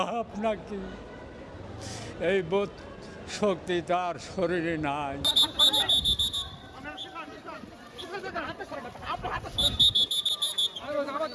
নাকি, এই বোধ শক্তি তার শরীরে নাই।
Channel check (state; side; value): identical; both; correlation 1.00